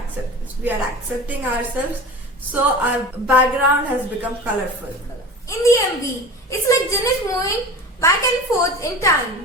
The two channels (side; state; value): both; normal; correlation 0.34